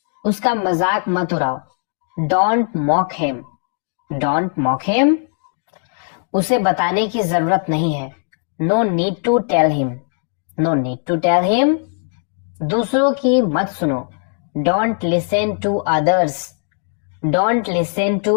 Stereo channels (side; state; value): right; silent; 57 dB below the other